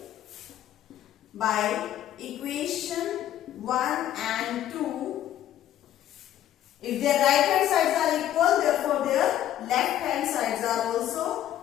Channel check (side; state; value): right; quieter; 12.0 dB